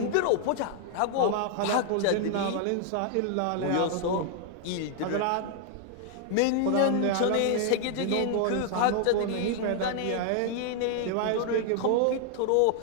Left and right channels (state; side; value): different; both; correlation 0.00